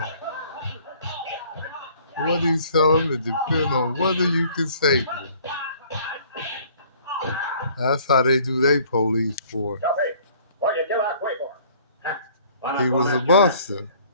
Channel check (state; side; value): inverted; both; correlation -0.55